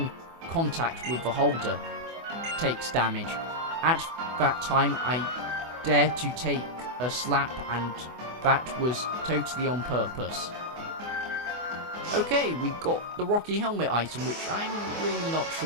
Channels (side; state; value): left; late; 24 ms